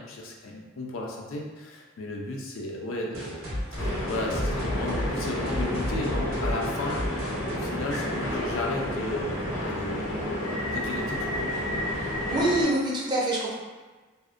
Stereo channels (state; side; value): normal; both; correlation 0.42